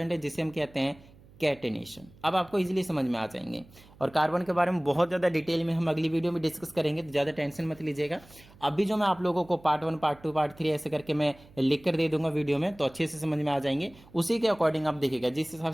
है, जिसे हम कहते हैं कैटेनेशन। अब आपको इजीली समझ में आ जाएंगे। और कार्बन के बारे में बहुत ज़्यादा डिटेल में हम अगली वीडियो में डिस्कस करेंगे, तो ज़्यादा टेंशन मत लीजिएगा। अभी जो मैं आप लोगों को पार्ट 1 पार्ट 2 पार्ट 3 ऐसे करके मैं लिख कर दे दूंगा वीडियो में, तो अच्छे से समझ में आ जाएंगे। उसी के अकॉर्डिंग आप देखिएगा, जिस हिसाब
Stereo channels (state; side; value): noise; right; hum, 24 dB below the sound